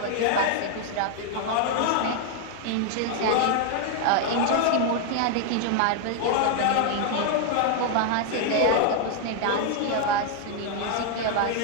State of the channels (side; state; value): both; different; correlation 0.00